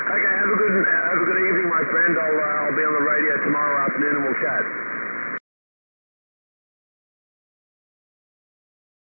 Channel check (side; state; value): both; inverted; correlation -1.00